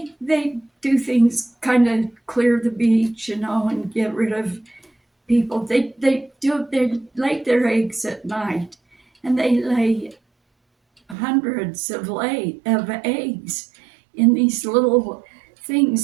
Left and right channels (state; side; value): drops out; left; at 11.2 s